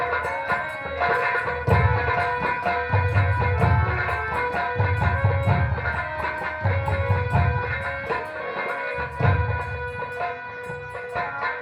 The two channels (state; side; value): identical; both; correlation 1.00